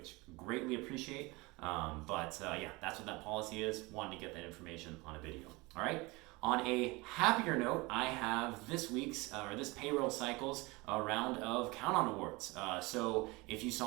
greatly appreciate. Yeah, that's what that policy is. Wanted to get that information on a video. All right. On a happier note, I have this payroll cycle's round of count on awards. So if you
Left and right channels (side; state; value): left; quieter; 24.0 dB